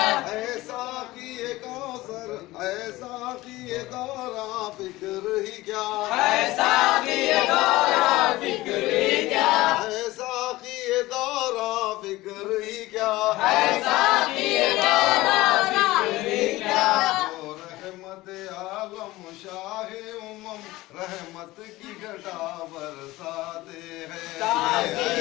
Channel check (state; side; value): quieter; right; 18.6 dB